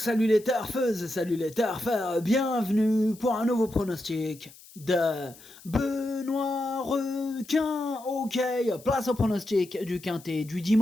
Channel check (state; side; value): noise; left; hiss, 22 dB below the sound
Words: les turfeuses, salut les turfeurs, bienvenue pour un nouveau pronostic de Benoît Requin. Ok, place au pronostic du quintet du